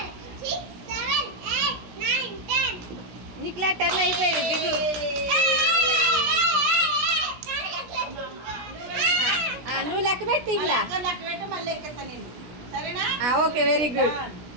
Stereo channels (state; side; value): late; left; 17 ms